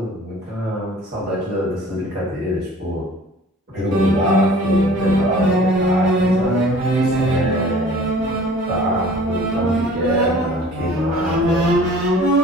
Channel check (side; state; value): both; normal; correlation 0.47